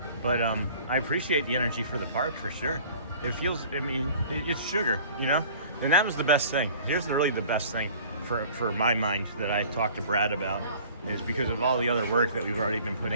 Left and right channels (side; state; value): both; inverted; correlation -0.48